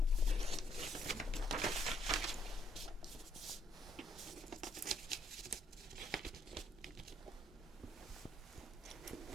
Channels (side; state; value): both; normal; correlation 0.69